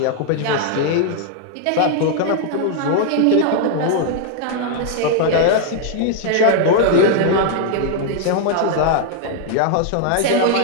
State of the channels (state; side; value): different; both; correlation 0.00